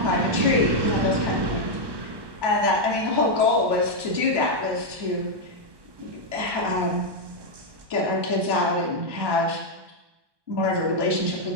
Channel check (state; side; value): late; left; 1.2 ms